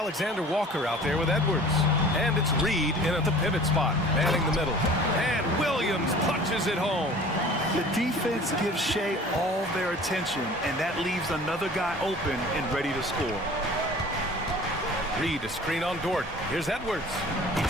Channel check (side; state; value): both; normal; correlation 0.45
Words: out there with Edwards. And it's Reed in at the pivot spot, manning the middle. And Williams punches it home. The defense gives Shea all their attention, and that leaves another guy open and ready to score. Reed a screen on Dort. Here's Edwards. He